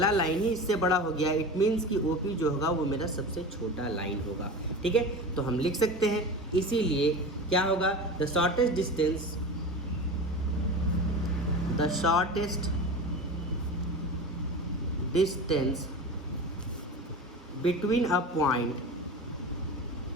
लाइन ही इससे बड़ा हो गया, इट मीन्स कि OP जो होगा वो मेरा सबसे छोटा लाइन होगा, ठीक है। तो हम लिख सकते हैं, इसीलिए क्या होगा? The shortest distance between a point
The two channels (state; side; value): normal; both; correlation 0.30